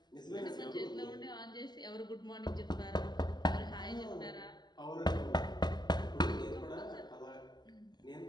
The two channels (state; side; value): late; right; 0.21 ms